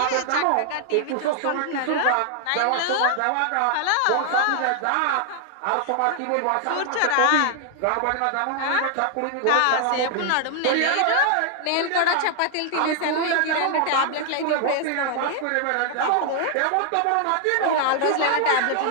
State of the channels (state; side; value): different; both; correlation 0.00